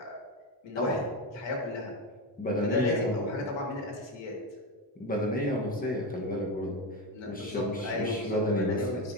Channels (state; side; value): normal; both; correlation 0.15